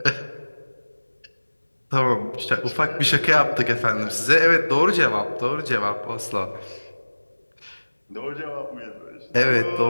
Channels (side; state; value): both; inverted; correlation -1.00